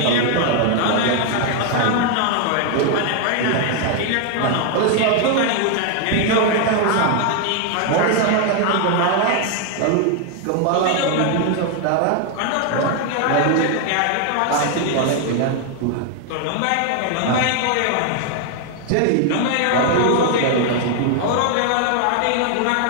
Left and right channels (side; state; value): both; different; correlation 0.00